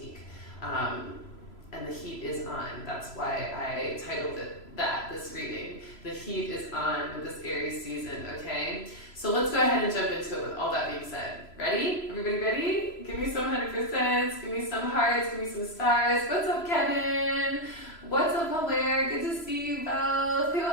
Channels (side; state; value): right; late; 3.0 ms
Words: And the heat is on. That's why I titled it that, this reading. The heat is on with this Aries season, okay? So let's go ahead and jump into it with all that being said. Ready? Everybody ready? Give me some 100%, give me some hearts, give me some stars. What's up, Kevin? What's up, Hilaire? Good to see you both. Who